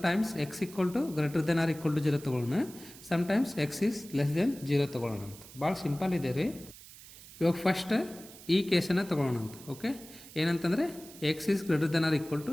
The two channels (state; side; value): noise; right; hiss, 18 dB below the sound